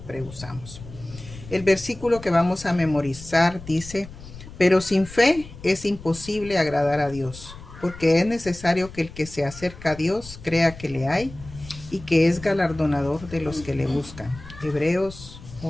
usamos. El versículo que vamos a memorizar dice: pero sin fe es imposible agradar a Dios, porque es necesario que el que se acerca a Dios crea que le hay y que es galardonador de los que le buscan. Hebreos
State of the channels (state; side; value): noise; left; rumble, 16 dB below the sound